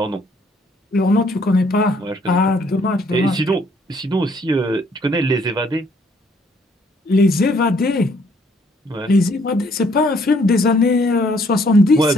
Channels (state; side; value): normal; both; correlation 0.65